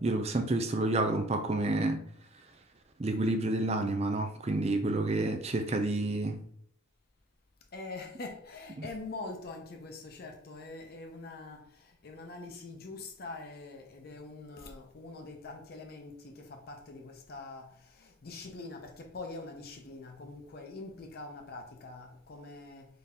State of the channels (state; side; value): normal; both; correlation 0.55